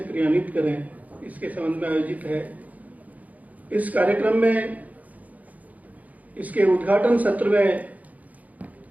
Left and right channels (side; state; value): left; late; 0.076 ms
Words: क्रियान्वित करें, इसके संबंध में आयोजित है। इस कार्यक्रम में इसके उद्घाटन सत्र में